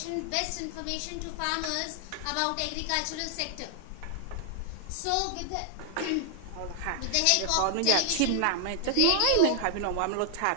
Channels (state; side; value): different; both; correlation 0.00